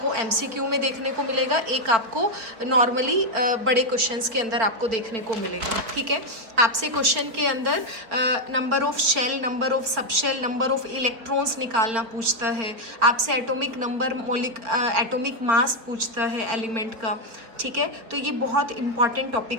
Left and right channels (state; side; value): late; left; 4.4 ms